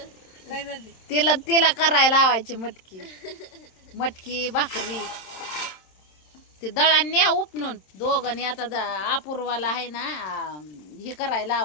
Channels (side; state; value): right; late; 27 ms